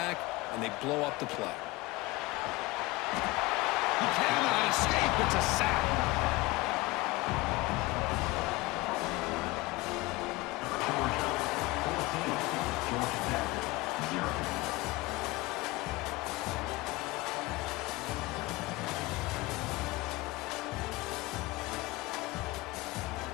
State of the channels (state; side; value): quieter; right; 21.4 dB